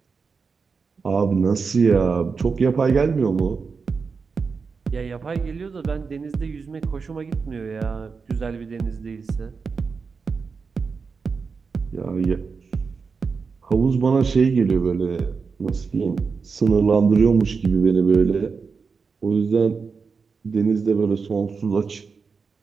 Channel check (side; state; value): left; quieter; 5.1 dB